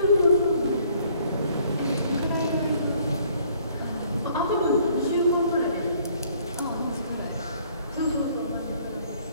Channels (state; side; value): inverted; both; correlation -0.61